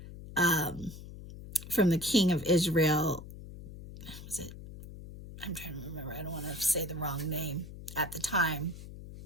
from the king of Israel? Was it? I'm trying to remember. I don't want to say the wrong name at the time.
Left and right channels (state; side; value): noise; left; hum, 14 dB below the sound